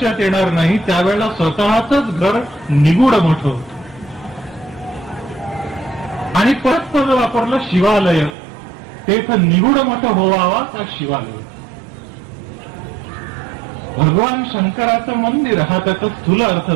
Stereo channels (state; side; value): drops out; left; at 8.3 s